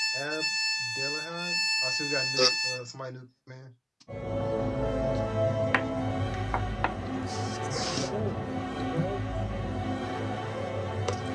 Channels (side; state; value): both; identical; correlation 1.00